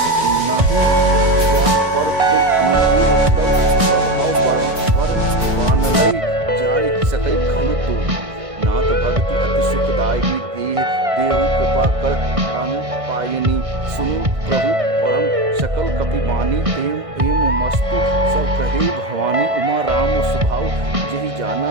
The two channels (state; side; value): late; left; 1.6 ms